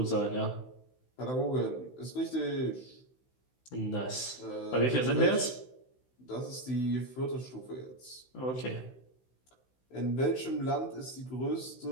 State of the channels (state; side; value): late; right; 16 ms